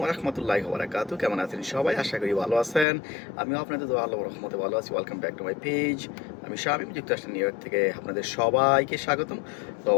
রাহমাতুল্লাহি ওয়া বারাকাতুহু। কেমন আছেন সবাই? আশা করি ভালো আছেন। আমিও আপনাদের দোয়া আল্লাহর রহমতে ভালো আছি। Welcome back to my page. আমি শামীম, যুক্তরাষ্ট্রের নিউ ইয়র্ক থেকে আপনাদের সবাইকে স্বাগতম। তো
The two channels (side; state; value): right; drops out; at 2.9 s